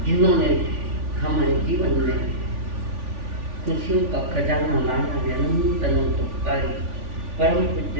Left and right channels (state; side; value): late; left; 3.4 ms